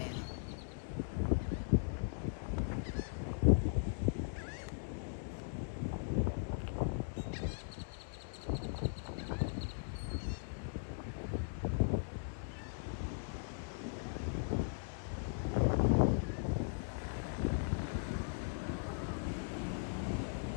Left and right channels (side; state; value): right; silent; digital silence